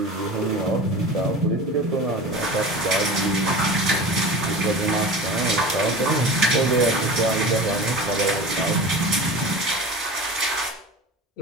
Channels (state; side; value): normal; both; correlation 0.34